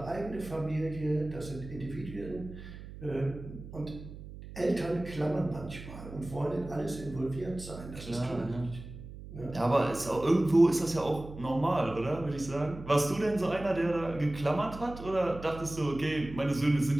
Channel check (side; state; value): right; noise; hum, 13 dB below the sound